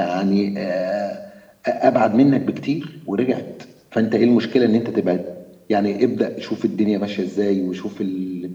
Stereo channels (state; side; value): identical; both; correlation 1.00